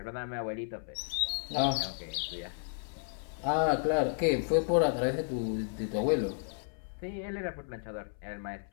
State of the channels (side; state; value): right; silent; 56 dB below the other